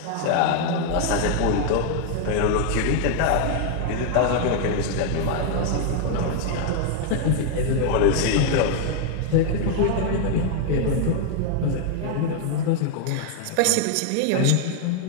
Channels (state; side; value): different; both; correlation 0.00